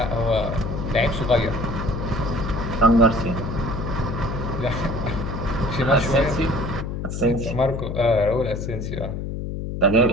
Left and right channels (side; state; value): left; noise; hum, 5 dB below the sound